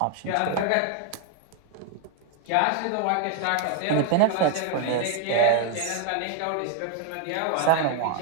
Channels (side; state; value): both; different; correlation 0.01